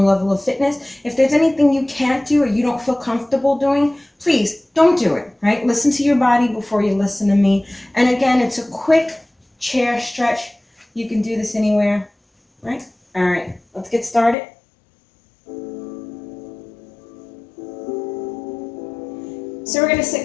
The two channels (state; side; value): drops out; right; at 14.4 s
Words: level of fitness. If there's anything you can't do or you don't feel comfortable doing, please don't do it, right? Listen to your body before you listen to me. And again, it's a quick chair stretch. You can do this anywhere, right? All right, let's get started. So we're going to